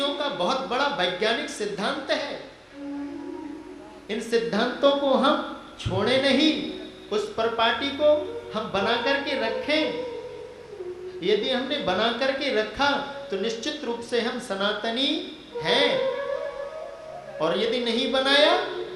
का बहुत बड़ा वैज्ञानिक सिद्धांत है। इन सिद्धांतों को हम छोड़े नहीं, उस परिपाटी को हम बना करके रखें। यदि हमने बना करके रखा तो निश्चित रूप से हम सनातनी हैं, और यदि नहीं बनाया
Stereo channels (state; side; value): identical; both; correlation 1.00